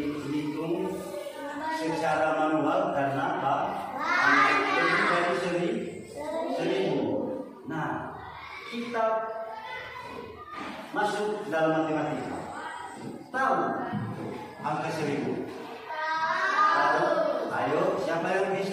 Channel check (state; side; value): identical; both; correlation 1.00